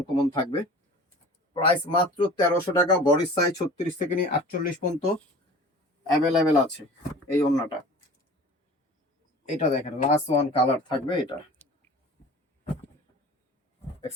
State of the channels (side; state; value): both; normal; correlation 0.42